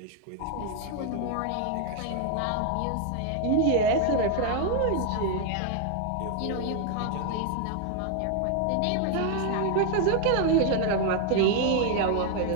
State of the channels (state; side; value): different; both; correlation 0.00